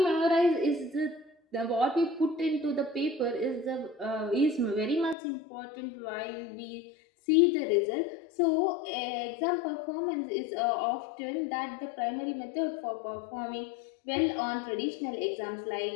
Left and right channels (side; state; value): right; drops out; at 5.2 s